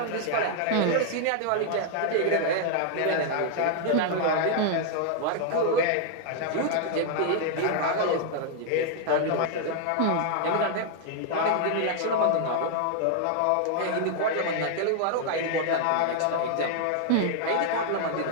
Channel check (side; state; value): both; different; correlation 0.00